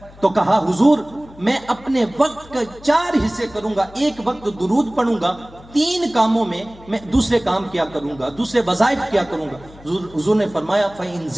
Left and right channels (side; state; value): left; noise; hum, 21 dB below the sound